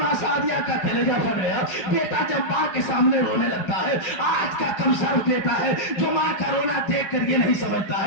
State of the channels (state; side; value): late; right; 5.5 ms